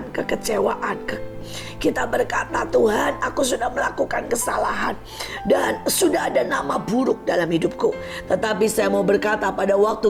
kekecewaan. Kita berkata, Tuhan, aku sudah melakukan kesalahan dan sudah ada nama buruk dalam hidupku. Tetapi saya mau berkata, pada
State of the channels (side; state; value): both; identical; correlation 1.00